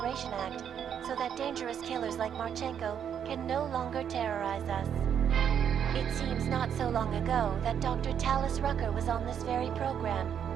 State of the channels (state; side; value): quieter; left; 8.5 dB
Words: Act so that dangerous killers like Marchenko can no longer terrorize us? It seems not so long ago that Dr. Talis Rucker was on this very program,